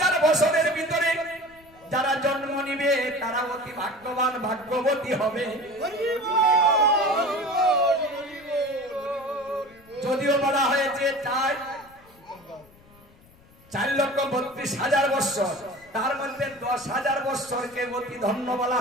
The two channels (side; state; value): left; noise; rumble, 27 dB below the sound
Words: বছরের ভিতরে যারা জন্ম নিবে তারা অতি ভাগ্যবান, ভাগ্যবতী হবে। যদিও বলা হয়েছে 4,32,000 বৎসর, তার মধ্যে 10,000 বৎসরকে অতি ধন্য বলা